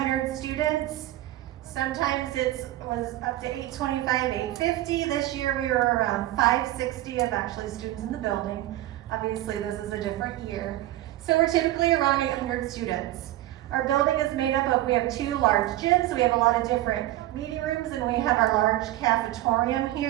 students. Sometimes it was up to 825, 850. This year we were around 560 of actually students in the building. Obviously this is a different year. So we're typically around 800 students. Our building is made up of, we have 2 large gyms, we have a lot of different meeting rooms, and we have our large cafetorium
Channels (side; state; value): left; quieter; 15.5 dB